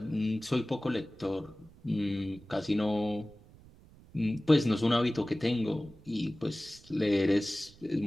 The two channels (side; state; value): right; noise; rumble, 24 dB below the sound